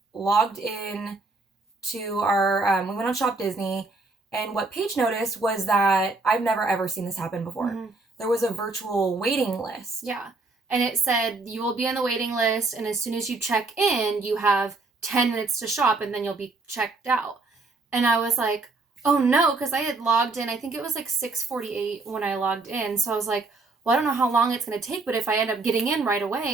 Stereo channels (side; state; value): left; quieter; 3.6 dB